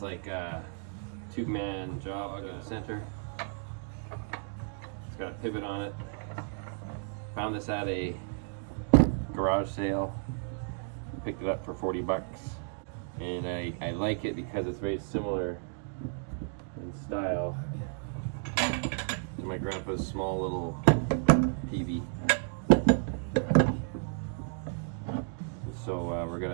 like a two-man job in the center. It's got a pivot on it. Found this at a garage sale. Picked it up for 40 bucks. And I like it because it's very similar in style to my grandpa's small little Peavey. So we're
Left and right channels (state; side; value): silent; left; 56 dB below the other